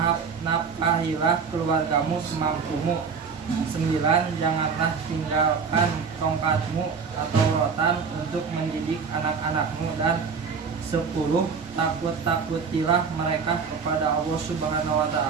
Nafkahilah keluargamu semampumu. 9. Janganlah tinggalkan tongkatmu atau rotan untuk mendidik anak-anakmu. Dan 10. Takut-takutilah mereka kepada Allah Subhanahu wa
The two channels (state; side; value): quieter; left; 5.7 dB